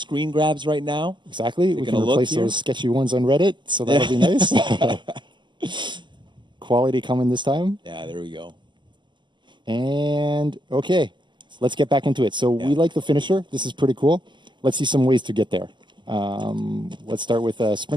grabs right now. Exactly. We can Taking a look replace here. those sketchy ones on Reddit, so that'll be nice. Quality coming this time. Yeah, there we go. And okay, let's get back into it. So we like the finisher. This is pretty cool. Let's see some ways to get there. Let's start with a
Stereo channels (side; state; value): left; late; 0.22 ms